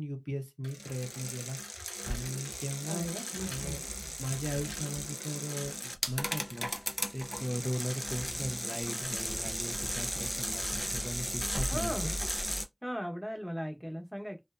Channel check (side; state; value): both; identical; correlation 1.00